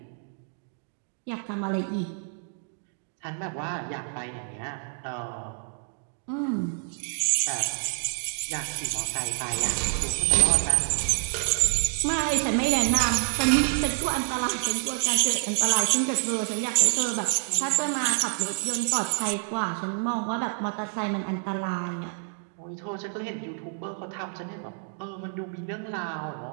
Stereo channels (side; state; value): left; silent; 60 dB below the other